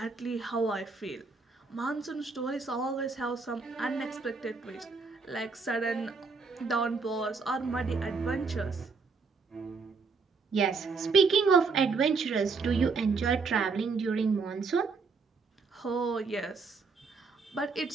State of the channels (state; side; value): quieter; left; 4.6 dB